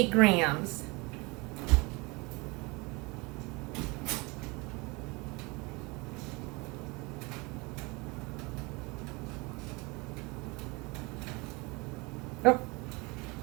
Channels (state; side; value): quieter; left; 26.4 dB